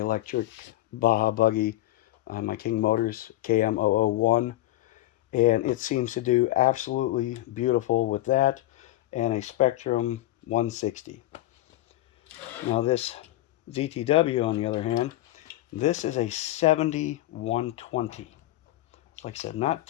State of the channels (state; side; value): quieter; right; 16.0 dB